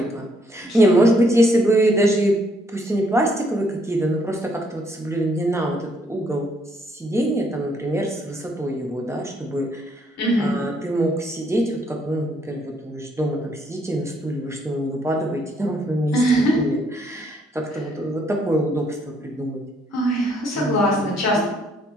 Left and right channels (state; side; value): normal; both; correlation 0.69